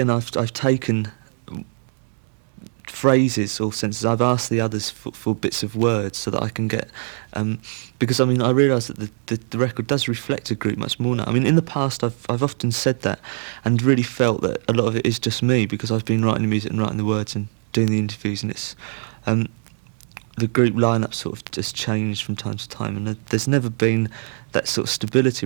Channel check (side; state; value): left; silent; 64 dB below the other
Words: taken phrases or sentences. I've asked the others for bits of words so that I can get, because I mean, I realise that the record does reflect a group much more now. I mean, in the past I've often said that and really felt that a lot of it is just me, because I've been writing the music and writing the words and doing the interviews, and it's the group lineup sort of just changed from time to time, and there's never been that sort of stability